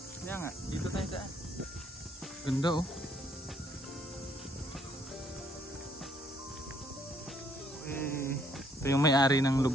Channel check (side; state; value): both; normal; correlation 0.66